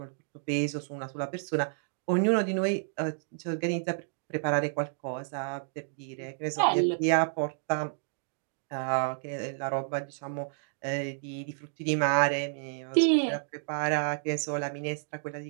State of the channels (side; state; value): left; silent; digital silence